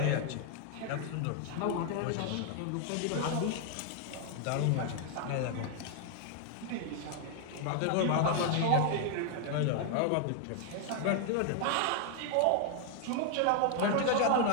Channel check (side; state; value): both; different; correlation 0.00